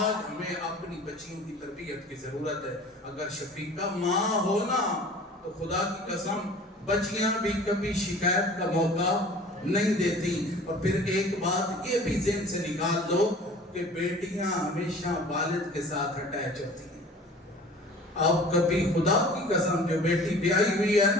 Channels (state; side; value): normal; both; correlation 0.45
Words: ہمیں اپنی بچیوں کی تربیت کی ضرورت ہے۔ اگر شفیقہ ماں ہونا تو خدا کی قسم بچیاں بھی کبھی شکایت کا موقع نہیں دیتی۔ اور پھر ایک بات یہ بھی ذہن سے نکال دو کہ بیٹیاں ہمیشہ والد کے ساتھ اٹیچ ہوتی ہیں۔ اب کبھی خدا کی قسم جو بیٹی بیائی ہوئی ہے